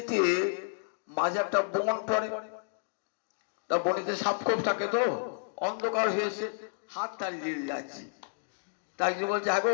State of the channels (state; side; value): silent; right; digital silence